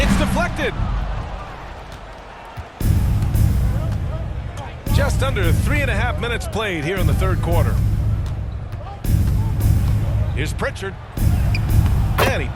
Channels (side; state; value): both; identical; correlation 1.00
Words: deflected. Just under 3.5 minutes played here in the third quarter. Here's Pritchard. And he